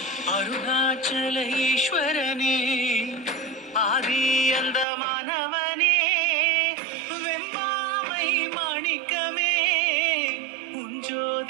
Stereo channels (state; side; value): drops out; left; at 4.9 s